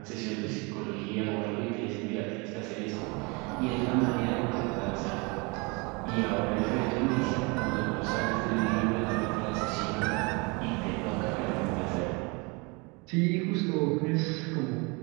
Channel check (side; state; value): left; quieter; 29.1 dB